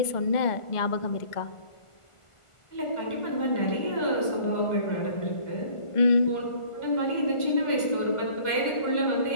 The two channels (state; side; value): late; right; 1.4 ms